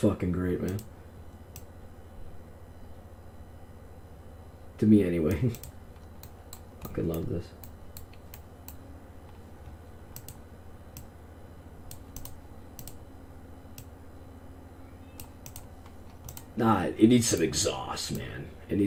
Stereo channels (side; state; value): both; identical; correlation 1.00